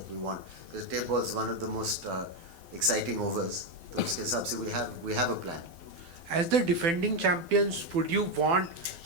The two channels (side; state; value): left; late; 12 ms